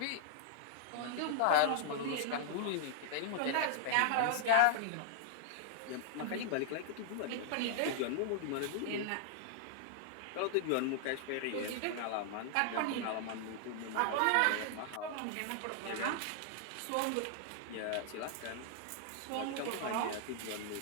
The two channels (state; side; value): different; both; correlation -0.01